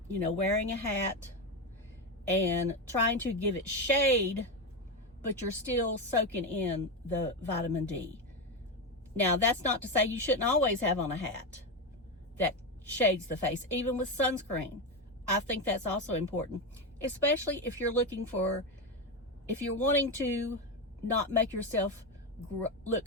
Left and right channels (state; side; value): normal; both; correlation 0.13